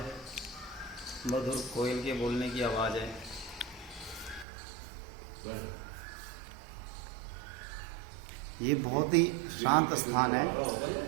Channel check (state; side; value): drops out; left; at 4.5 s